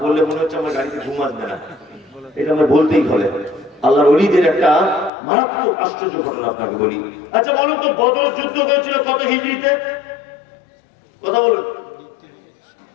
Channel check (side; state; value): right; drops out; at 5.1 s